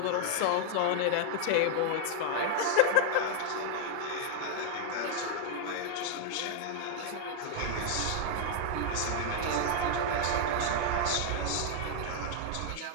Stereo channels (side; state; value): both; different; correlation 0.00